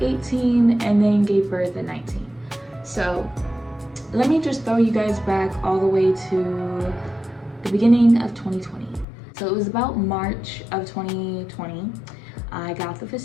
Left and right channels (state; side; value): drops out; right; at 9.1 s